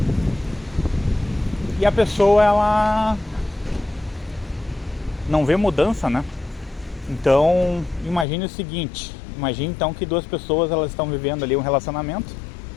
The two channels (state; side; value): drops out; right; at 8.2 s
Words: e a pessoa ela não vê mudança, né? Então imagine o seguinte, imagine então que duas pessoas elas estão vivendo ali um relacionamento